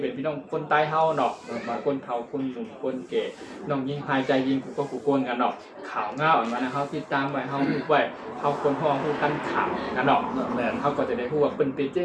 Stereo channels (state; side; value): identical; both; correlation 1.00